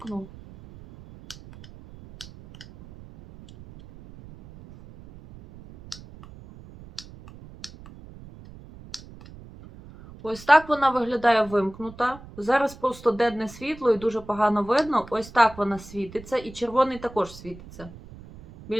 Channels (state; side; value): noise; right; rumble, 18 dB below the sound